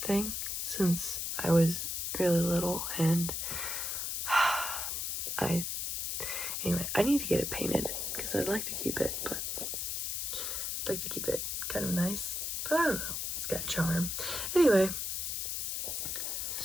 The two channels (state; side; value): noise; left; hiss, 2 dB below the sound